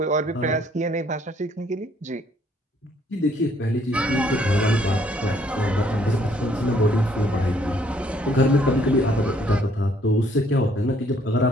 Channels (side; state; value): both; normal; correlation 0.65